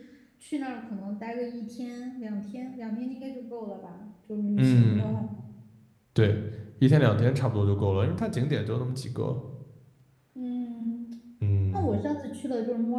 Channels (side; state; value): both; identical; correlation 1.00